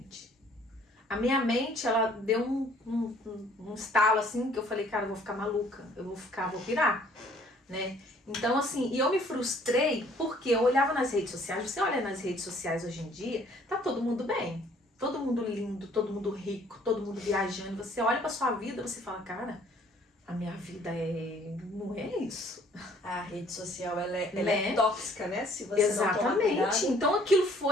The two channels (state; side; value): normal; both; correlation 0.59